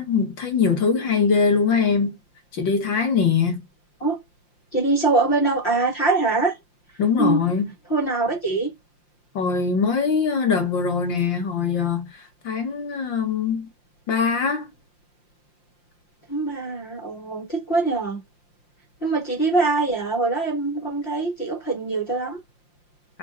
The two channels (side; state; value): right; late; 5.7 ms